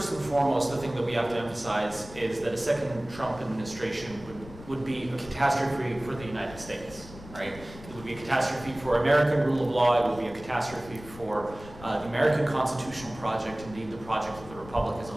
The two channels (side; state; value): left; noise; rumble, 17 dB below the sound